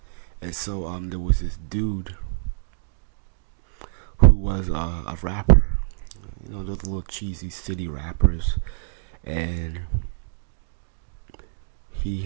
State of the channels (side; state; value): left; silent; digital silence